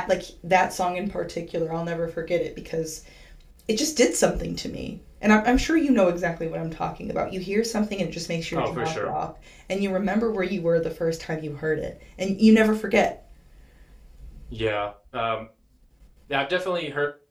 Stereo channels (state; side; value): identical; both; correlation 1.00